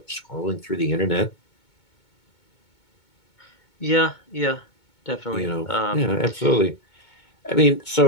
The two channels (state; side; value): late; right; 2.2 ms